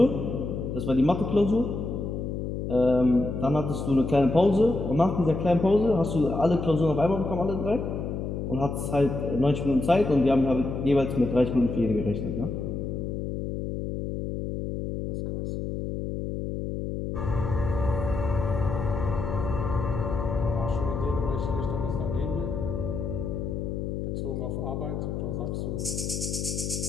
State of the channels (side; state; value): left; noise; hum, 4 dB below the sound